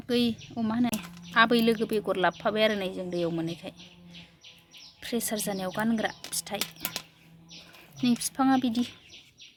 मा होनो आबै लोगो बेगर लाबोफाबाय आरो नै जों दैयाव मोननायखाय प्रेसार जानायाव गानग्रा फिथाइ नै बिफाङा बिदि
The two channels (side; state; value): both; identical; correlation 1.00